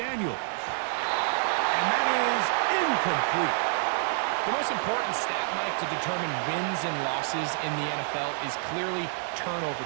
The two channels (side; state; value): left; silent; 59 dB below the other